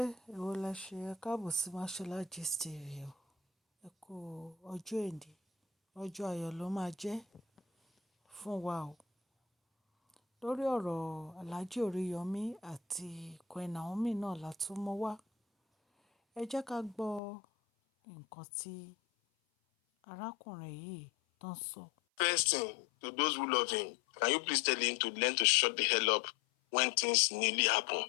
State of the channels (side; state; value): right; drops out; at 17.2 s